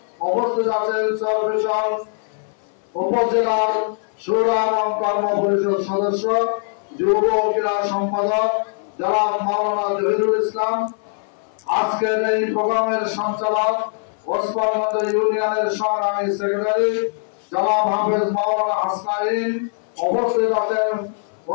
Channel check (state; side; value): silent; right; 57 dB below the other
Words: উপস্থিত আছেন চরপেশন উপজেলার শুরা এবং কর্ম পরিষদ সদস্য যুব ক্রীড়া সম্পাদক জনাব মাওলানা জহিরুল ইসলাম। আজকের এই প্রোগ্রামের সঞ্চালক ওসমানগঞ্জ ইউনিয়নের সংগ্রামী সেক্রেটারি জনাব হাফেজ মাওলানা হাসনাইন। উপস্থিত আছেন